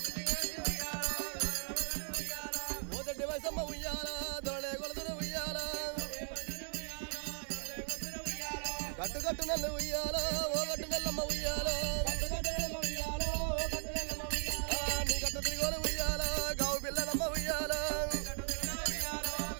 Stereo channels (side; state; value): left; silent; 53 dB below the other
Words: ఓదొడ్డి వయసమ్మ ఉయ్యాల దొరలే కొలుతురు ఉయ్యాల గట్టు గట్టు నెల్లు ఉయ్యాల ఓ గట్టు నెల్లమ్మ ఉయ్యాల